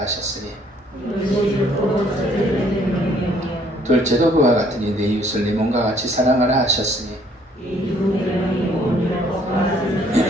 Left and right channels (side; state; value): both; normal; correlation 0.63